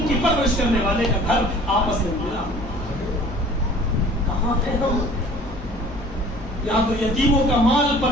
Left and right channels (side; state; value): left; noise; hum, 16 dB below the sound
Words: کی پرورش کرنے والے کا گھر آپس میں ملا. کہاں ہے ہم؟ یہاں تو یتیموں کا مال پر